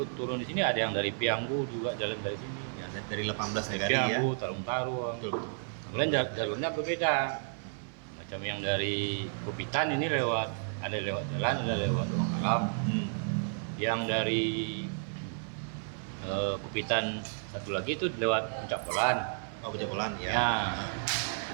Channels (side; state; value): left; silent; 56 dB below the other